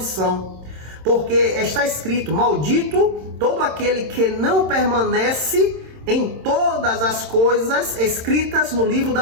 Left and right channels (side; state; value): left; late; 26 ms